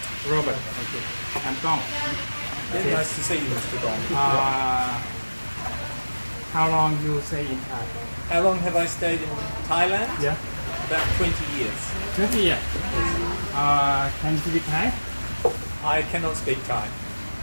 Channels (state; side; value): inverted; both; correlation -1.00